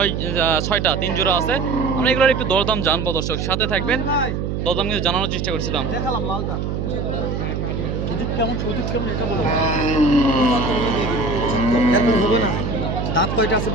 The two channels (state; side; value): noise; right; hum, 2 dB below the sound